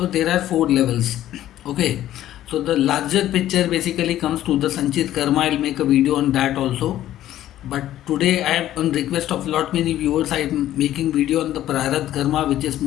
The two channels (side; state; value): right; quieter; 13.0 dB